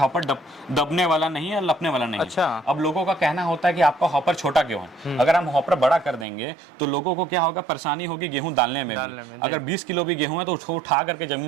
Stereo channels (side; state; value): left; drops out; at 6.2 s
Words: दबने वाला नहीं है, लपने वाला नहीं है। अच्छा। अब लोगों का कहना होता है कि आपका हॉपर छोटा क्यों है? अगर हम हॉपर बड़ा कर देंगे तो लोगों को क्या होगा, परेशानी होगी गेहूं डालने में। अगर 20 किलो भी गेहूं है तो उसको उठा करके